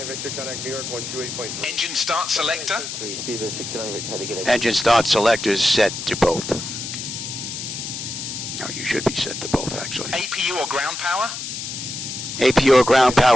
Victor, contact New York 128.3. Engine start selector. Speedbird 69 Victor, how to get it? Engine start selectors set to both. No, you should be set to both, actually. APU or ground power. APU or ground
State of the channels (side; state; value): left; noise; hiss, 6 dB below the sound